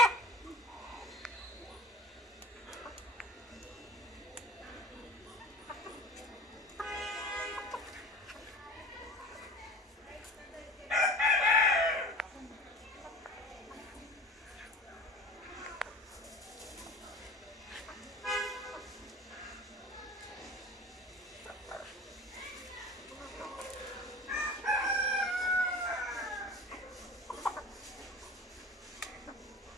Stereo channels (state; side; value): normal; both; correlation 0.39